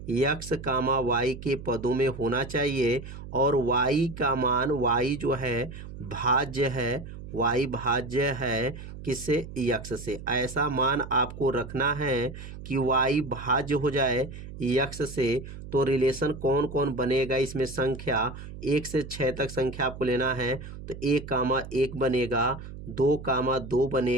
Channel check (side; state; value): right; noise; hum, 12 dB below the sound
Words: x, y के पदों में होना चाहिए, और y का मान y जो है भाज्य है, y भाज्य है किससे? x से। ऐसा मान आपको रखना है कि y भाज्य हो जाए x से। तो रिलेशन कौन कौन बनेगा इसमें? संख्या 1 से 6 तक संख्या आपको लेना है। तो 1, 1 बनेगा, 2, 2